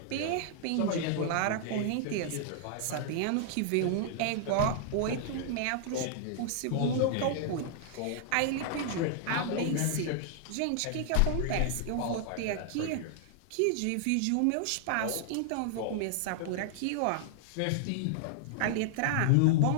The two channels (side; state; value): both; different; correlation -0.01